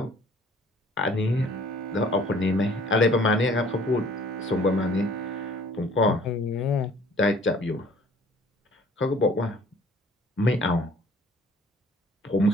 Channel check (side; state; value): both; normal; correlation 0.54